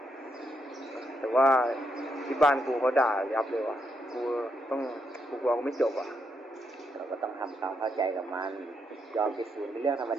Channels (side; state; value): both; normal; correlation 0.79